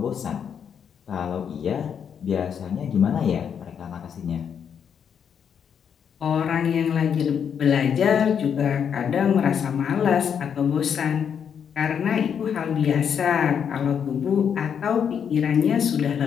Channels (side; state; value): right; quieter; 7.7 dB